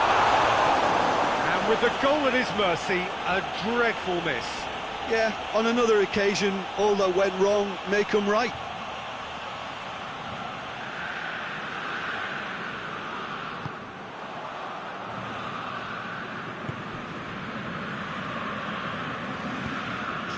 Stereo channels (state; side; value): identical; both; correlation 1.00